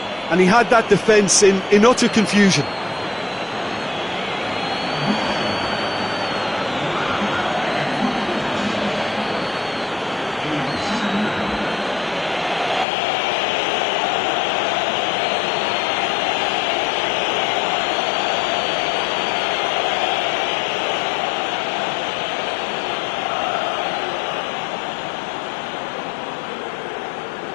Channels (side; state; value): right; drops out; at 12.9 s